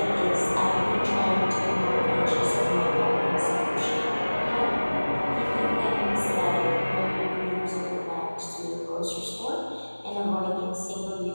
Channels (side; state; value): both; inverted; correlation -1.00